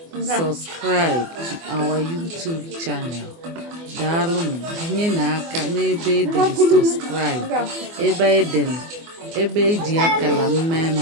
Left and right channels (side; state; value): left; late; 24 ms